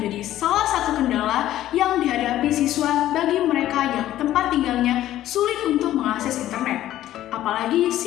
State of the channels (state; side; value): quieter; right; 13.4 dB